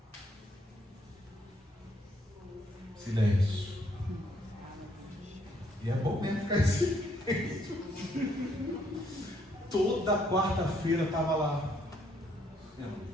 Silêncio. E é bom mesmo ficar em silêncio. Toda quarta-feira estava lá,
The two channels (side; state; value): both; normal; correlation 0.70